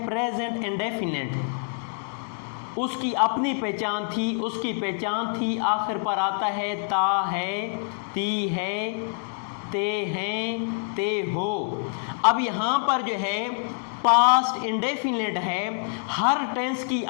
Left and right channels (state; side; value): silent; right; 61 dB below the other